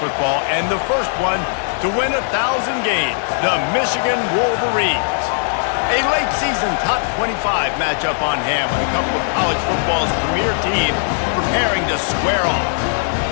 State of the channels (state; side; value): silent; right; digital silence